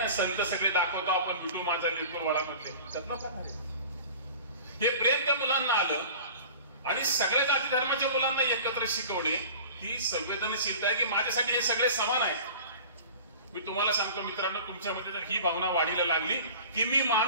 संत सगळे दाखवतो आपण, विठू माझा लेकरू वळामधले, त्यातला काय आहे. हे प्रेम त्या मुलांना आलं आणि सगळ्या जाती धर्माच्या मुलांना एकत्र शिकवणे ही संवेदनशीलता आहे की माझ्यासाठी हे सगळे समान आहेत. मी तुम्हाला सांगतो मित्रांनो, तुमच्यामध्ये जर ही भावना वाढीला लागली की मी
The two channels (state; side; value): inverted; both; correlation -0.41